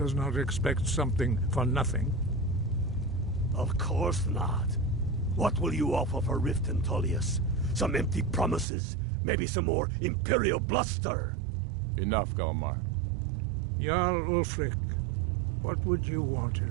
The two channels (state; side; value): drops out; left; at 8.7 s